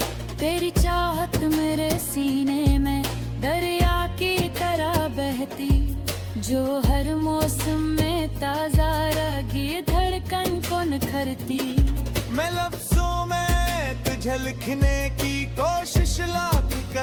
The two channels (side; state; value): both; identical; correlation 1.00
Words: तेरी चाहत मेरे सीने में दरिया की तरह बहती, जो हर मौसम में ताजा रगी धड़कन को निखरती। मैं लफ्जों में तुझे लिखने की कोशिश लाख